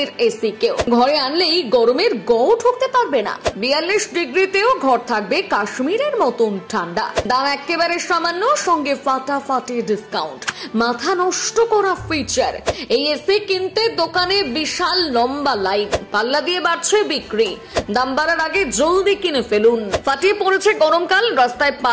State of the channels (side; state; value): both; identical; correlation 1.00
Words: এসি। কেউ ঘরে আনলেই গরমের গও ঠকতে পারবে না। 42 ডিগ্রিতেও ঘর থাকবে কাশ্মীরের মতন ঠান্ডা। দাম একেবারে সামান্য, সঙ্গে ফাটাফাটি ডিসকাউন্ট। মাথা নষ্ট করা ফিচার। এই এসি কিনতে দোকানে বিশাল লম্বা লাইন। পাল্লা দিয়ে বাড়ছে বিক্রি। দাম বাড়ার আগে জলদি কিনে ফেলুন। ফাটিয়ে পড়েছে গরমকাল। রাস্তায় পা